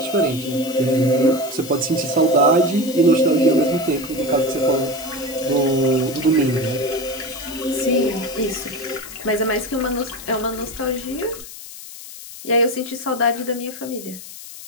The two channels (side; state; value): left; noise; hiss, 14 dB below the sound